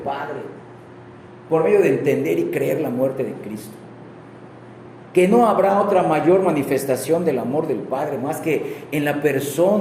por medio de entender y creer la muerte de Cristo, que no habrá otra mayor manifestación del amor del Padre más que en la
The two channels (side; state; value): both; identical; correlation 1.00